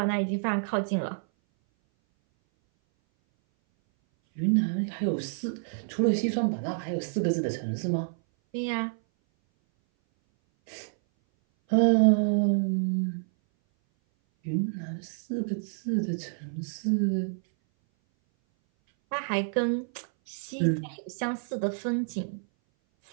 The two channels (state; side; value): silent; left; 58 dB below the other